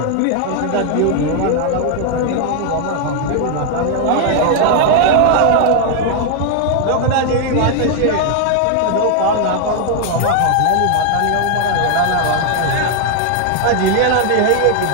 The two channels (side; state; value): both; different; correlation 0.00